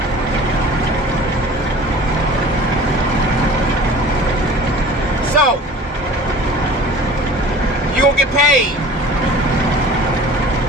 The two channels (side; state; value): both; normal; correlation 0.43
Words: So, you're going to get paid